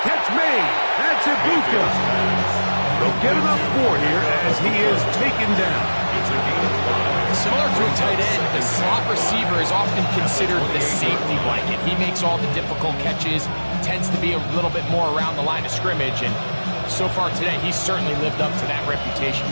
catch made. That's Ibuka. They'll get enough for here as he is taken down. Similar to a tight end, the slot receiver is often considered the safety blanket. He makes all the difficult catches, tends to be a little bit more around the line of scrimmage, and so far today, he's certainly lived up to that reputation.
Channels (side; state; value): both; inverted; correlation -1.00